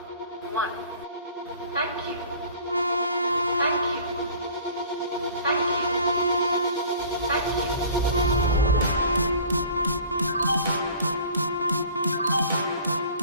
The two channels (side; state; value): both; inverted; correlation -0.47